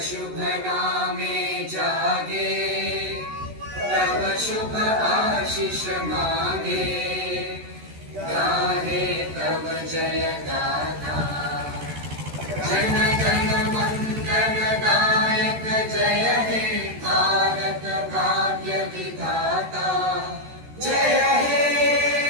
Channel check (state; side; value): late; left; 13 ms